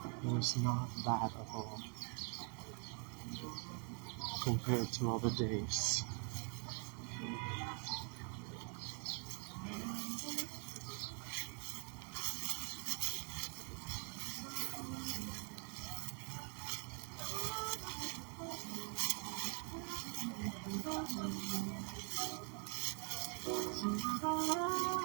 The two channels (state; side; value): quieter; left; 38.4 dB